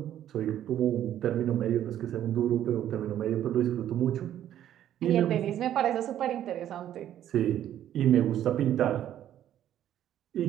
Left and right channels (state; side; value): quieter; left; 11.3 dB